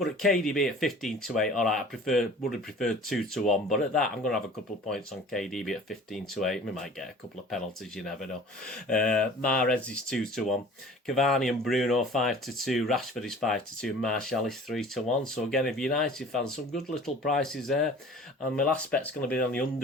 at KDB at 15-8. All right, would have preferred 2-1, but at that, I'm going to have a couple of points on KDB at 15-8. We might get a couple of penalties, you never know. Mahrez is 2-1. Cavani and Bruno 5-2. Rashford is 5-2. Martial is 3-1. So again, if United fans, some good little prices there. And my last bet's going to be on the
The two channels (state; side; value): normal; both; correlation 0.45